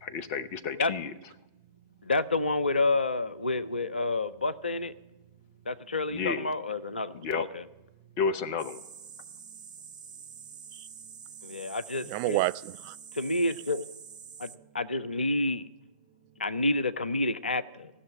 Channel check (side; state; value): both; inverted; correlation -0.56